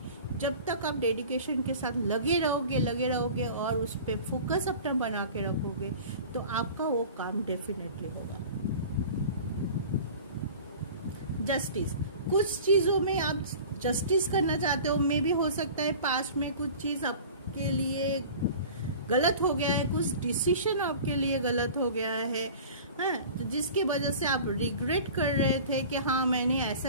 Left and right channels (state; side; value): inverted; both; correlation -0.40